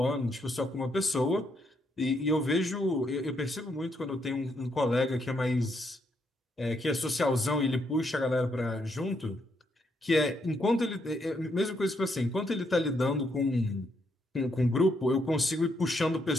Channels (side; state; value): both; normal; correlation 0.76